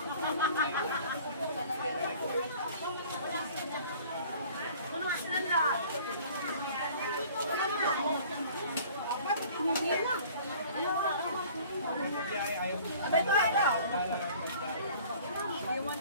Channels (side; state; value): both; inverted; correlation -0.49